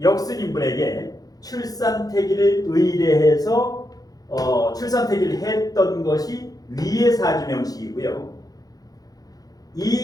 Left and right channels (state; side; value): late; right; 0.18 ms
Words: 역순인분에게 출산택일을 의뢰해서 출산택일을 했던 것이 위의 사주명식이고요.